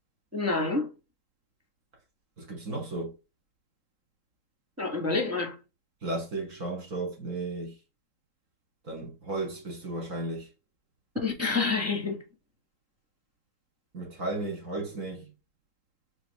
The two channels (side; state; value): left; late; 3.8 ms